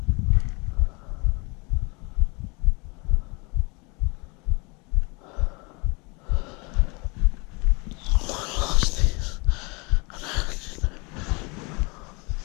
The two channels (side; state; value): right; quieter; 29.2 dB